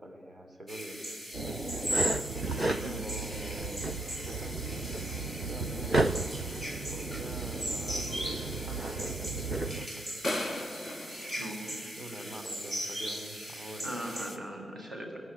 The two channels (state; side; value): normal; both; correlation 0.75